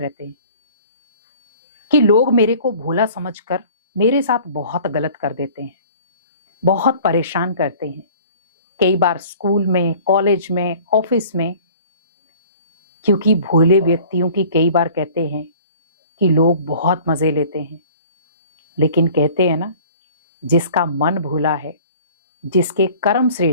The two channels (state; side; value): inverted; both; correlation -0.48